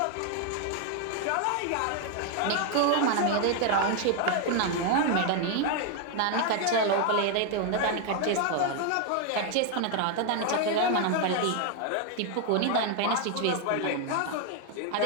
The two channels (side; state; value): both; different; correlation 0.00